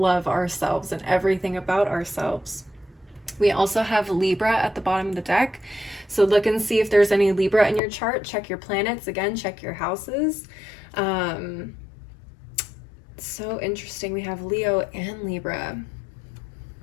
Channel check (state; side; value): drops out; right; at 7.8 s